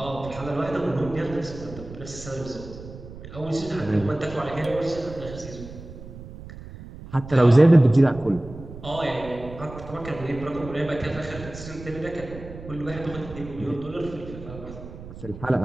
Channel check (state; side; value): noise; right; rumble, 14 dB below the sound